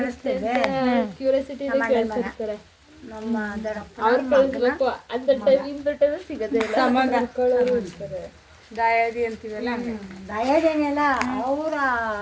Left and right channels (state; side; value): identical; both; correlation 1.00